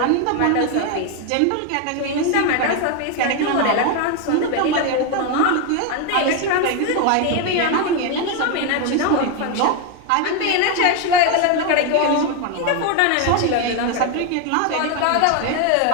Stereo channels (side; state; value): both; different; correlation 0.01